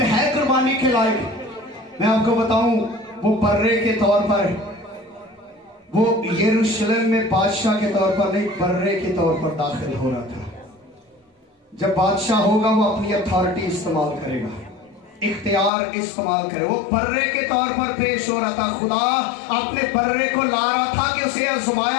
ہے قربانی کے لائق؟ میں آپ کو بتاؤں وہ برے کے طور پر, وہ یروشلم میں بادشاہ کے طور پر نہیں, برے کے طور پر داخل ہو رہا تھا. جب بادشاہ ہوگا وہ اپنی اتھارٹی استعمال کرے گا, اختیار استعمال کرے. وہ برے کے طور پر پیش ہو رہا تھا. خدا اپنے برے کو لا رہا تھا کہ اسے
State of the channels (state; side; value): drops out; right; at 15.7 s